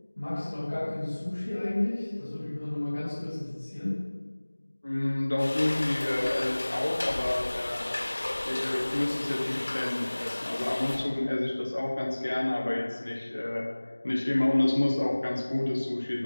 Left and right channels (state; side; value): inverted; both; correlation -1.00